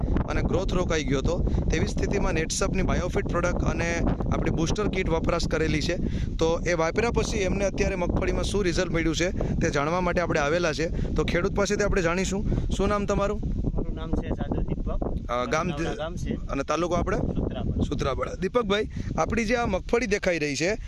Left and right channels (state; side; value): identical; both; correlation 1.00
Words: અને ગ્રોથ રોકાઈ ગયો હતો તેવી સ્થિતિમાં નેટસપની બાયોફિટ પ્રોડક્ટ અને આપણી બૂસ્ટર કીટ વપરાશ કરેલી છે. તો એ વાપર્યા પછી એમને અત્યારે મગફળીમાં શું રિઝલ્ટ મળ્યું છે તે જાણવા માટે આપણે આવેલા છે. તો ખેડૂત પાસેથી આપણે જાણીશું. શું નામ તમારું? મારું નામ છે સાધુ દીપક, ગામ છે અને તાલુકો આપણે સુત્રાપાડા. દીપકભાઈ, આપણી જે આ મગફળી દેખાઈ રહી છે,